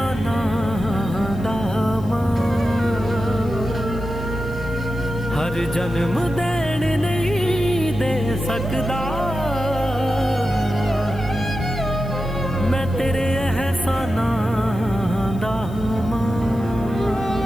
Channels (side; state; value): left; noise; hiss, 26 dB below the sound